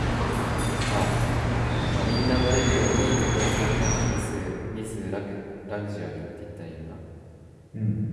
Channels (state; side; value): identical; both; correlation 1.00